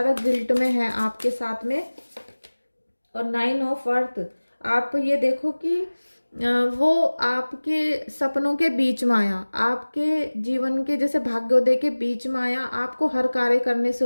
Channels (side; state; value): both; inverted; correlation -1.00